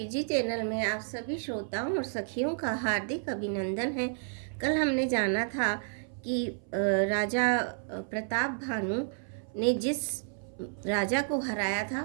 channel में आप सभी श्रोताओं और सखियों का हार्दिक अभिनंदन है। कल हमने जाना था कि राजा प्रताप भानु ने जिस राजा को हराया था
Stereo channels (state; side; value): silent; left; 57 dB below the other